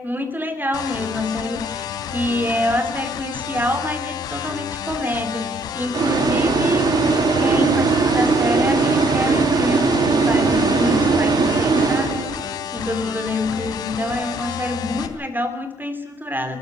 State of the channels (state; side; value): normal; both; correlation 0.66